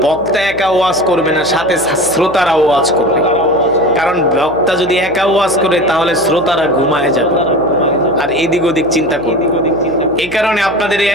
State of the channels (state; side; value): noise; right; hum, 19 dB below the sound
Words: বক্তা একা ওয়াজ করবে না, সাথে শ্রোতারা ওয়াজ করবে। কারণ বক্তা যদি একা ওয়াজ করে তাহলে শ্রোতারা ঘুমায় যাবে আর এদিক ওদিক চিন্তা করবে। এই কারণে আপনাদের